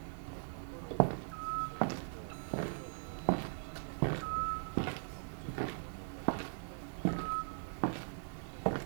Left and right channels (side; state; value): left; silent; digital silence